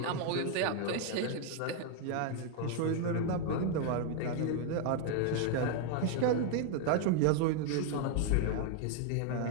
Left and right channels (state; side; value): different; both; correlation 0.00